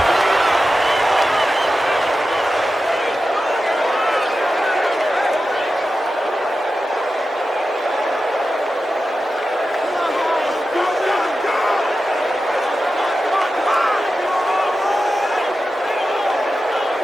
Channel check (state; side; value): normal; both; correlation 0.92